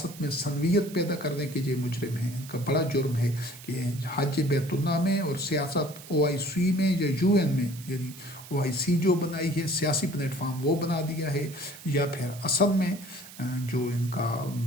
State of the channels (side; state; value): right; noise; hiss, 17 dB below the sound